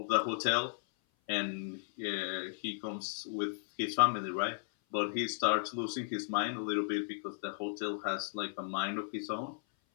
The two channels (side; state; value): right; silent; 54 dB below the other